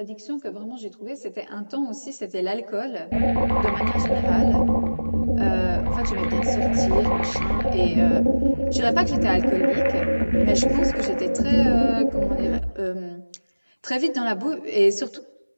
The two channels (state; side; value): inverted; both; correlation -1.00